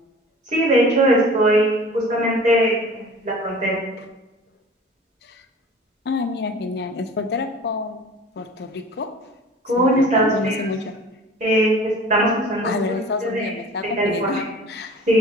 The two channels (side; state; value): both; normal; correlation 0.43